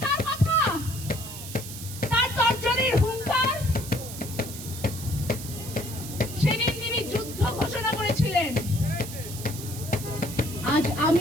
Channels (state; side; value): noise; right; hiss, 11 dB below the sound